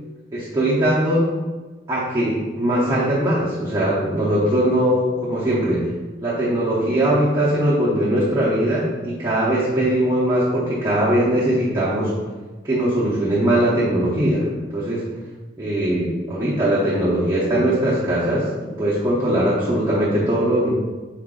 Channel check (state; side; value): normal; both; correlation 0.54